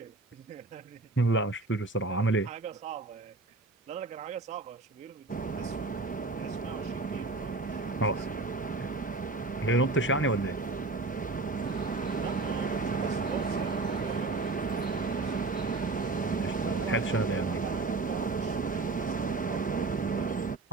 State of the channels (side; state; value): left; quieter; 3.5 dB